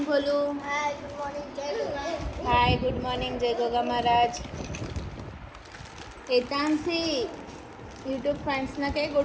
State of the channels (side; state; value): both; identical; correlation 1.00